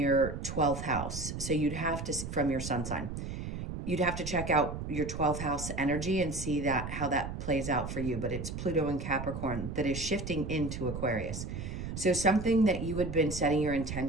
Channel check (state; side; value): noise; right; rumble, 6 dB below the sound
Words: 12th house. So you'd have to, from your sun sign, you'd have to check out your 12th house energy and see that how that plays out for you. But it's Pluto in Capricorn that is shifting into Aquarius. So something that you had been setting your